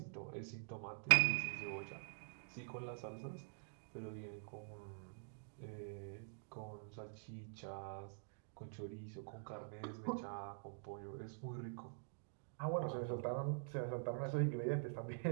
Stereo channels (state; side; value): silent; left; digital silence